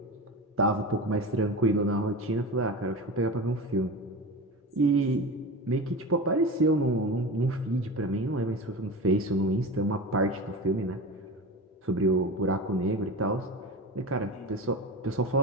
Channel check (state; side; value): normal; both; correlation 0.28